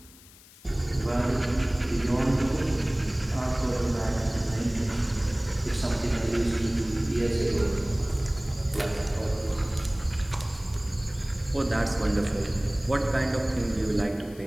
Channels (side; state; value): left; noise; hiss, 23 dB below the sound